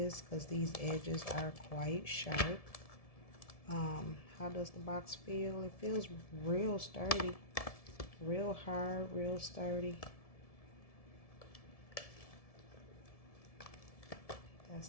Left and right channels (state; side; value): late; right; 1.7 ms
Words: because these edges are quite sharp. How does the box feel? It feels real sturdy. Real hard, real sturdy. That's